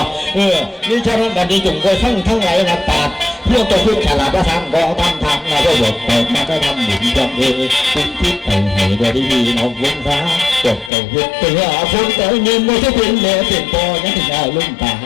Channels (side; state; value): right; drops out; at 10.9 s